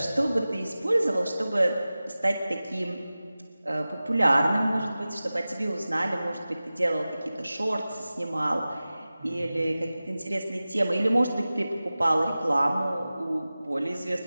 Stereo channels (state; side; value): inverted; both; correlation -0.96